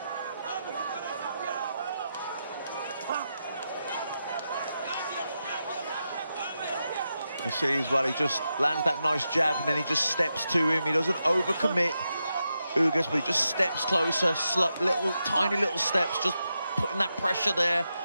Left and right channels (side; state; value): both; inverted; correlation -0.87